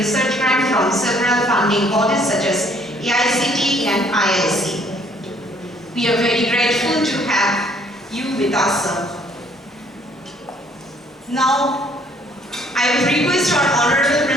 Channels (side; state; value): both; normal; correlation 0.62